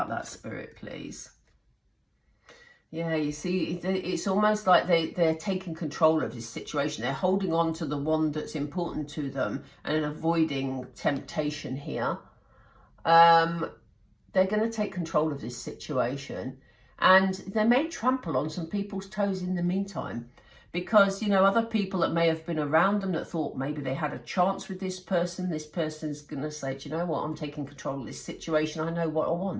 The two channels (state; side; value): identical; both; correlation 1.00